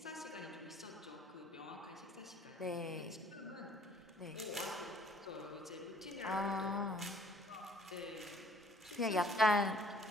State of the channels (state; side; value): normal; both; correlation 0.57